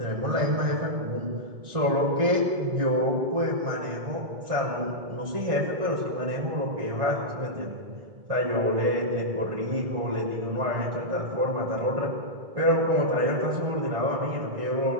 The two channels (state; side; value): late; left; 1.6 ms